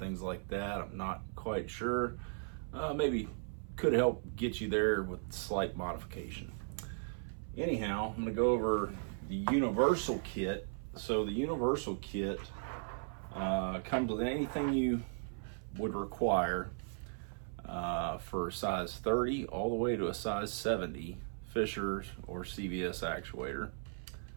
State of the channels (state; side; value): silent; left; 53 dB below the other